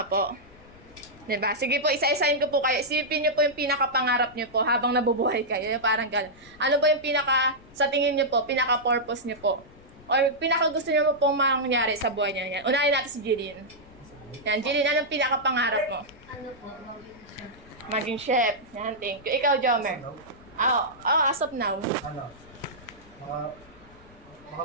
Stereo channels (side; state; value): left; noise; rumble, 23 dB below the sound